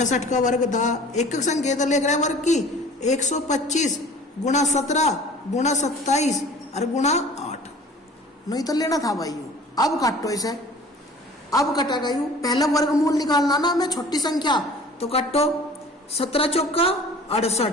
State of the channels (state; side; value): normal; both; correlation 0.46